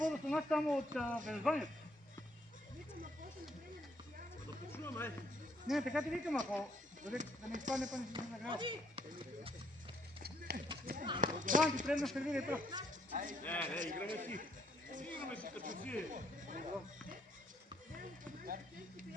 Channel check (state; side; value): normal; both; correlation 0.69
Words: стана само от Велзванието. Да почуваме. Не, така ти викам, ако да не изпадне, па не си нагрява. Да, ти предна сервира и то. Не, играме си. Играме си като си.